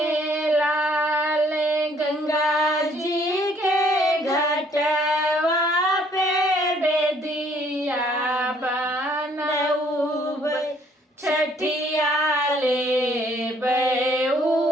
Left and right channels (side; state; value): both; normal; correlation 0.63